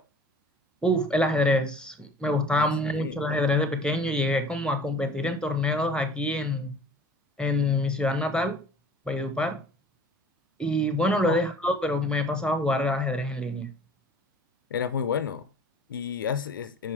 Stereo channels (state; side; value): normal; both; correlation 0.47